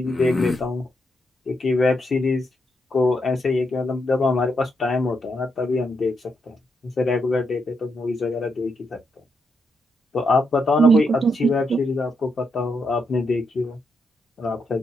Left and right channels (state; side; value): normal; both; correlation 0.80